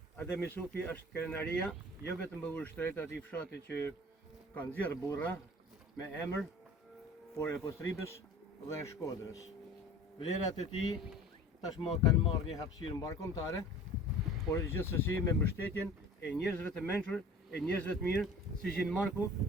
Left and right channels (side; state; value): both; normal; correlation 0.44